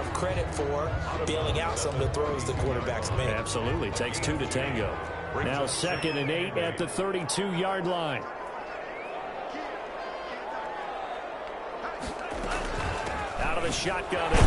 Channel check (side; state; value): both; identical; correlation 1.00